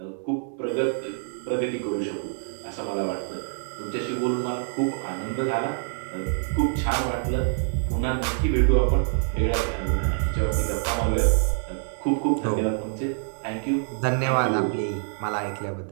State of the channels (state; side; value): silent; left; digital silence